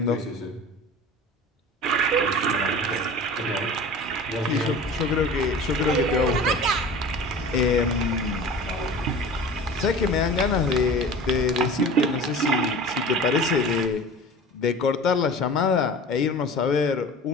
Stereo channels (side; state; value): both; normal; correlation 0.38